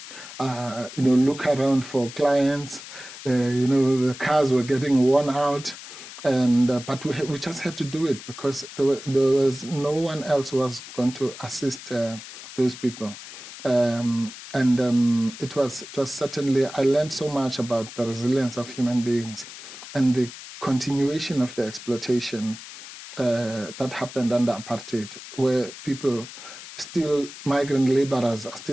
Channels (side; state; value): left; noise; hiss, 14 dB below the sound